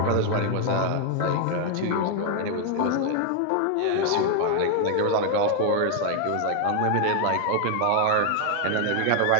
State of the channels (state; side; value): different; both; correlation 0.00